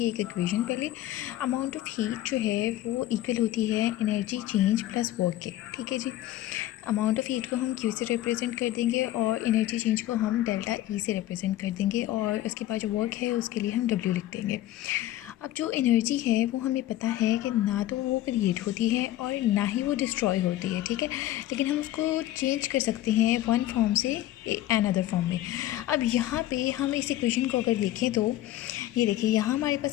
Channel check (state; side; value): quieter; right; 14.3 dB